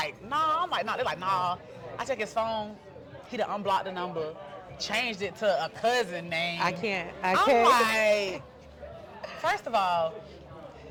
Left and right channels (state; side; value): identical; both; correlation 1.00